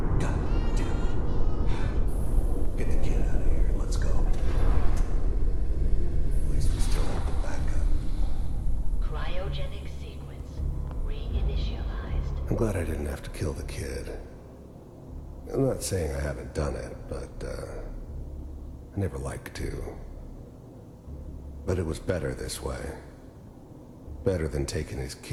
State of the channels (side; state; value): both; identical; correlation 1.00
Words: God damn it. Get the kid out of here and let's go. At least we still have the backup. Cryogenic sequence reinitialized. I'm glad I didn't have to kill the kid. I'm not saying I haven't done it, but, I never liked to. But it was better this way. Better than taking his